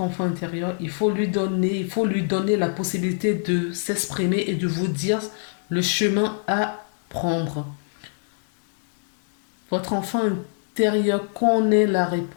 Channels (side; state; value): right; silent; digital silence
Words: enfant intérieur. Il faut lui donner la possibilité de s'exprimer et de vous dire le chemin à prendre. Votre enfant intérieur connaît la